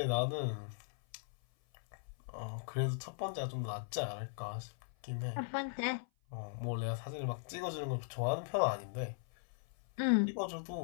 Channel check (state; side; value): silent; right; 52 dB below the other